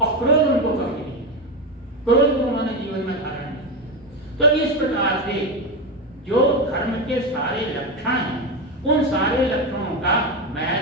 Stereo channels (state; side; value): normal; both; correlation 0.14